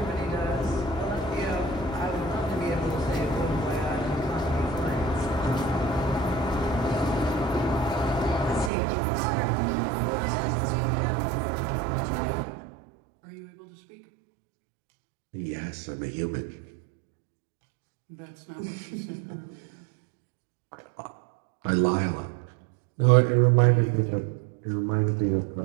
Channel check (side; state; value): left; drops out; at 8.7 s